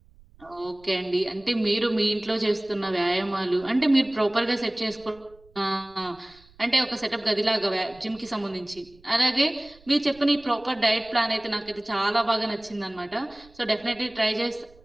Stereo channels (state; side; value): noise; right; rumble, 27 dB below the sound